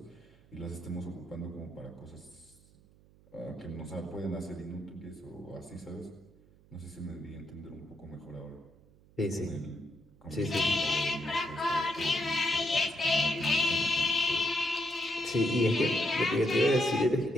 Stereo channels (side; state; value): right; noise; hum, 27 dB below the sound